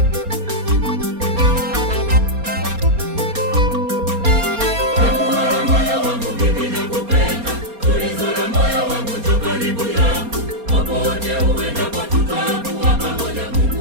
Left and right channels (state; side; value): late; left; 4.3 ms